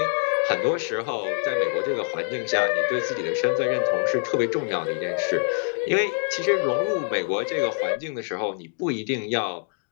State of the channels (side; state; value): right; silent; 61 dB below the other